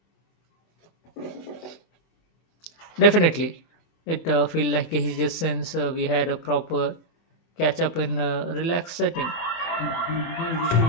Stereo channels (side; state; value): right; late; 24 ms